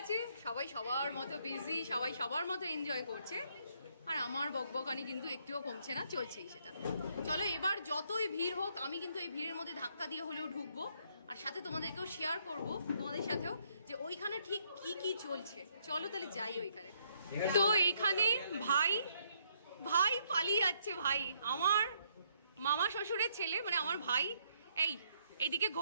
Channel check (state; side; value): inverted; both; correlation -0.71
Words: সবাই সবার মতো বিজি, সবাই সবার মতো এনজয় করছে। আর আমার বকবকানি কিন্তু একটুও কমছে না, চলছেই সেটা। চলো এবার যতই ভিড় হোক, আমি কিন্তু এই ভিড়ের মধ্যে ধাক্কা দিয়ে হলেও ঢুকবো, আর সাথে তোমাদেরকেও শেয়ার করব, তোমাদের সাথেও, যে ওইখানে ঠিক কি কি চলছে। চলো তাহলে যাই ওইখানে। তো এইখানে ভাই ভাই পালিয়ে যাচ্ছে। ভাই আমার মামা শ্বশুরের ছেলে, মানে আমার ভাই। এইদিকে